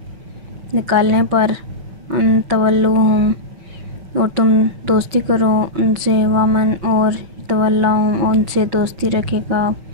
نکالنے پر ان تولوہم اور تم دوستی کرو ان سے ومن اور تولاہم ان سے دوستی رکھے گا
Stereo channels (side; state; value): left; late; 6.0 ms